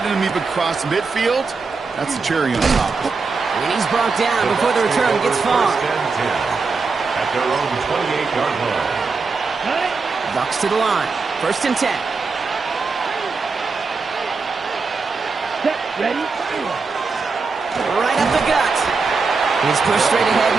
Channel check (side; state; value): left; quieter; 4.5 dB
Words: him even cross midfield, that's the cherry on top. And he's brought down before the return gets far. At their own 28-yard line. Bucks to the line. 1st and 10. Set, ready. Right up the gut. He's pushed straight ahead, and